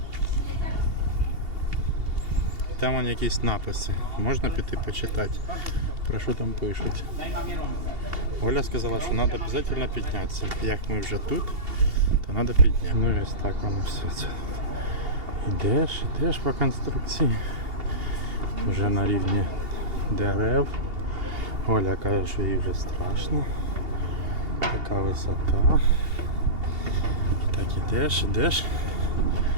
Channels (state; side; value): late; left; 2.8 ms